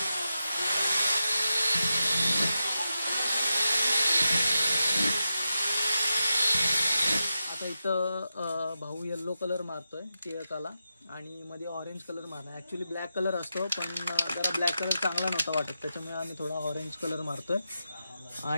इथं भाऊ येल्लो कलर मारतोय टिळकाला आणि मध्ये ऑरेंज कलर मारणार। ॲक्च्युली ब्लॅक कलर असतो, पण जरा ब्लॅक कलर चांगला नव्हता वाटत, त्याच्यामुळे आम्ही थोडा ऑरेंज कलर मारतोय।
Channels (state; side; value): inverted; both; correlation -0.89